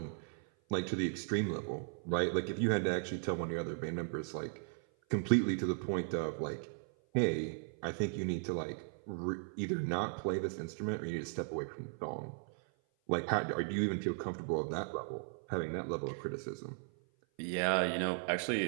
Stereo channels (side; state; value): left; silent; 53 dB below the other